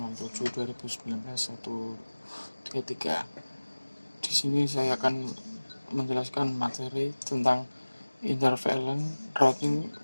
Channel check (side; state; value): both; inverted; correlation -1.00